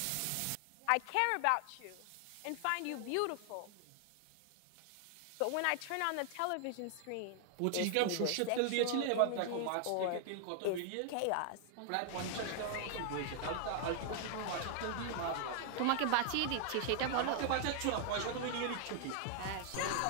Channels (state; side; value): different; both; correlation 0.00